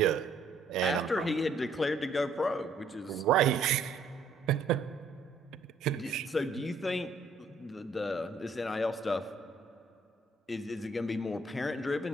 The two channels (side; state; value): left; quieter; 3.1 dB